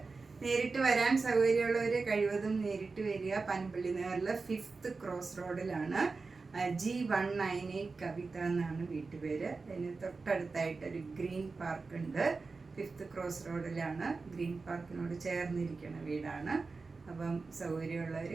നേരിട്ട് വരാൻ സൗകര്യമുള്ളവർ കഴിവതും നേരിട്ട് വരിക. പനമ്പള്ളി നഗറിൽ 5th ക്രോസ് റോഡിലാണ്. G198 കവിത എന്നാണ് വീട്ടുപേര്. അതിന് തൊട്ടടുത്തായിട്ടൊരു ഗ്രീൻ പാർക്ക് ഉണ്ട്. 5th ക്രോസ് റോഡിലാണ്. ഗ്രീൻ പാർക്കിനോട് ചേർന്നിരിക്കുന്ന വീടാണ്. അപ്പം സൗകര്യമുള്ളവർ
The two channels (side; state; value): left; quieter; 4.2 dB